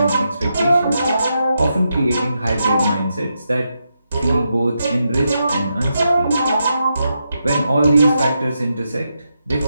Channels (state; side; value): inverted; both; correlation -0.84